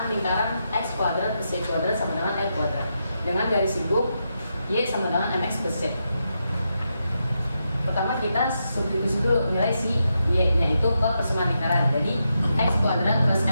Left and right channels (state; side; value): inverted; both; correlation -0.85